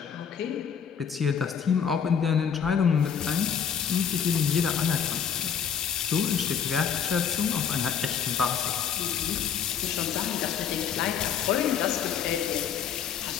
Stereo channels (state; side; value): quieter; right; 7.7 dB